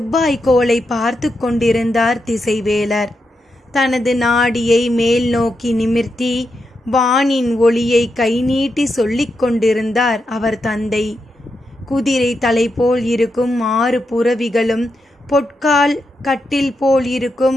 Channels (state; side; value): normal; both; correlation 0.85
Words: பார்த்து கொண்டிருந்தார் திசைவேலர். தனது நாடியை மேல் நோக்கி நிமிர்த்தி வானின் ஒளியை கை நீட்டி சொல்லிக் கொண்டிருந்தார் அவர் தந்தை. குதிரை தலை போல் இருக்கும் 6 புறவிகளும் பொற்கால் கட்டில் போல்